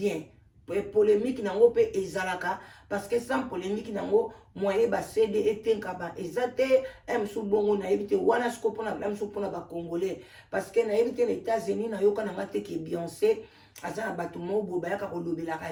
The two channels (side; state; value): both; identical; correlation 1.00